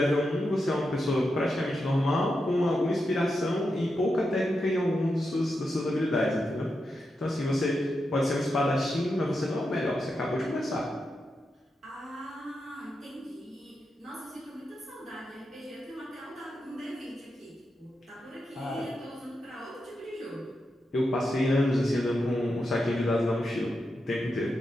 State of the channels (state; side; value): normal; both; correlation 0.87